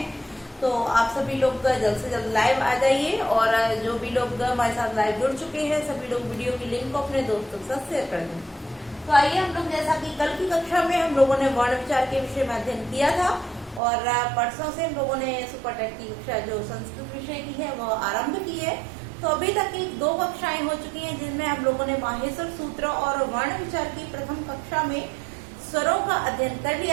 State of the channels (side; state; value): left; drops out; at 13.8 s